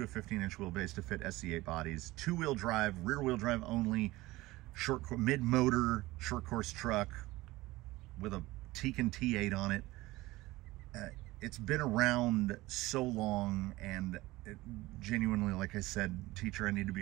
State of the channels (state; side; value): quieter; left; 19.2 dB